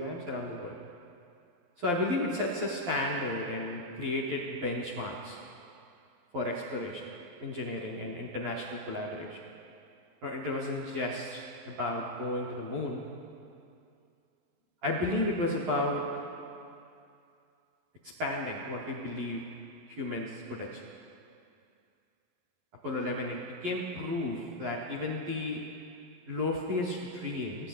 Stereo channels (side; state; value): left; late; 11 ms